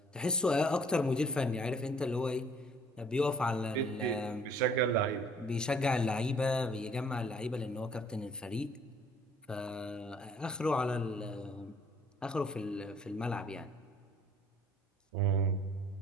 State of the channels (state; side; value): normal; both; correlation 0.58